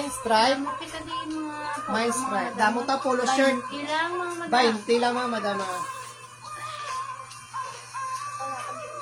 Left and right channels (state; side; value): identical; both; correlation 1.00